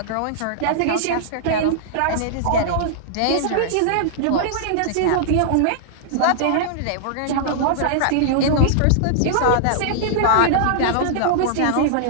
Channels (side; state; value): both; different; correlation -0.01